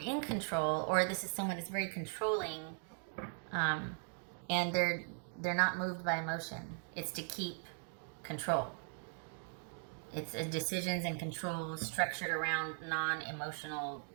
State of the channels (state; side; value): silent; left; 52 dB below the other